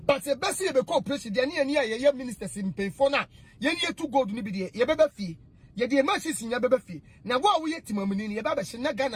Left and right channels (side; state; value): both; identical; correlation 1.00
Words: but e besi e be ko president ne ya ye ministers mpefo na ye ne etu gold ni bi de ye beba fie ye de ma sisi nya beba fie na wo ye timamuni ne ye baba hye na